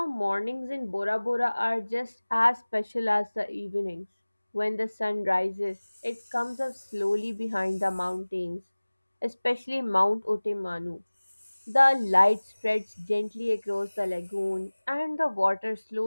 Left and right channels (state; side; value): inverted; both; correlation -1.00